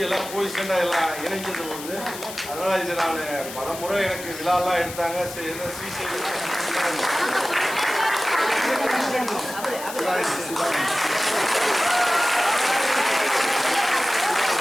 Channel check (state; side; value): noise; left; hiss, 11 dB below the sound